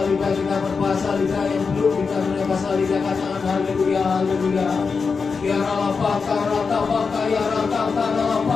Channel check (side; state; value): right; quieter; 5.1 dB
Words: kita berpasalida, yang belum dikaruniai pasalida, katakan haleluya, haleluya. Ya ralapaka, ratapaka, ya rataka,